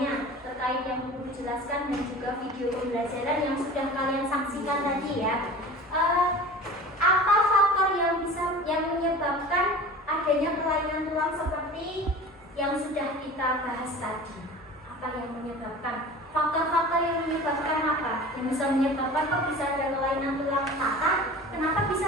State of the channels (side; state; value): both; normal; correlation 0.38